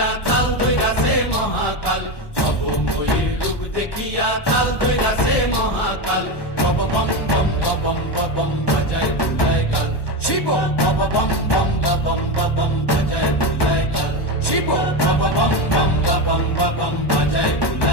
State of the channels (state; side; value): late; right; 1.1 ms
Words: তাল ধৈরাছে মহাকাল, ভবময়ীর রূপ দেখিয়া তাল ধৈরাছে মহাকাল। বব বম বম বাজায় বুলায় গাল, শিব বব বম বম বাজায় বুলায় গাল, শিব বব বম বম বাজায়